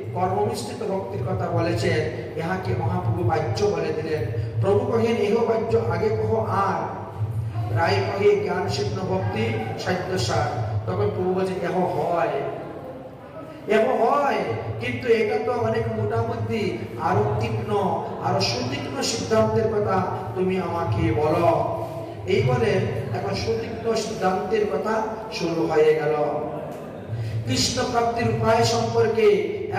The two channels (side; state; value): both; identical; correlation 1.00